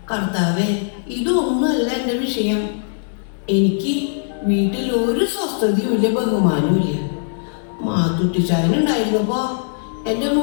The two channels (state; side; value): silent; right; digital silence